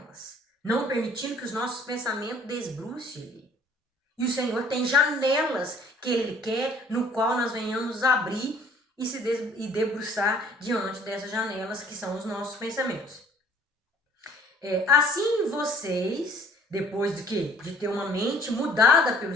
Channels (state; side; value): normal; both; correlation 0.56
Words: não permitindo que os nossos pensamentos desbrucem. E o Senhor tem janelas que Ele quer, no qual nós venhamos abrir e debruçar diante dessas janelas que são os nossos pensamentos. Assim vocês, depois de quê? De ter uma mente mudada pelo